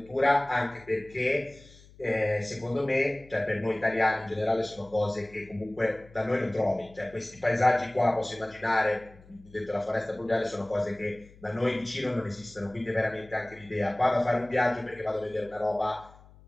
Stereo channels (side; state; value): left; noise; hum, 24 dB below the sound